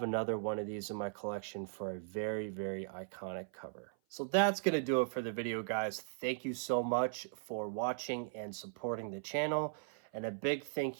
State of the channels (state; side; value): silent; left; 52 dB below the other